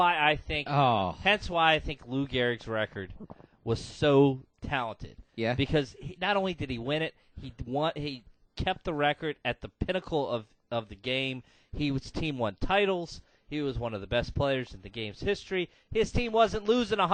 I think Lou Gehrig's record was so talented. Yeah. Because not only did he win it, he kept the record at the pinnacle of the game. His team won titles. He was one of the best players in the game's history. His team wasn't losing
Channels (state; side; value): identical; both; correlation 1.00